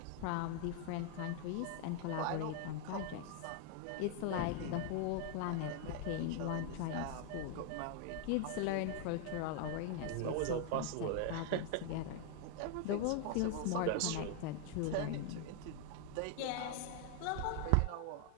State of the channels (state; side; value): different; both; correlation 0.00